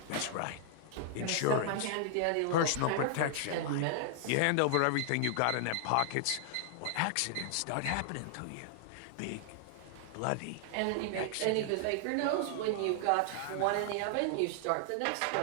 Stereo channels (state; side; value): different; both; correlation 0.00